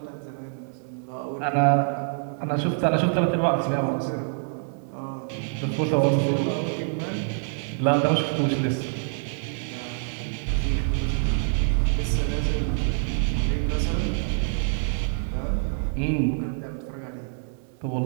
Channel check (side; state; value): left; silent; digital silence